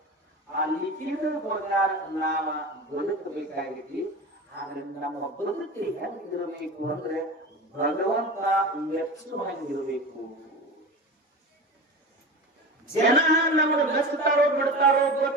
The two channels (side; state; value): both; normal; correlation 0.30